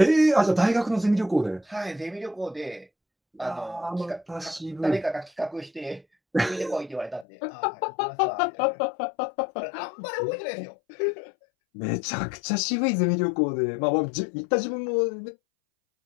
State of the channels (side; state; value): right; drops out; at 7.2 s